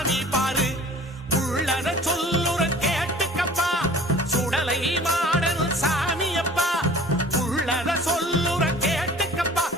பாரு உள்ளத சொல்லுற கேட்டுக்கப்பா சுடலை மாடன் சாமியப்பா உள்ளத சொல்லுற கேட்டுக்கப்பா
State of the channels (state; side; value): normal; both; correlation 0.47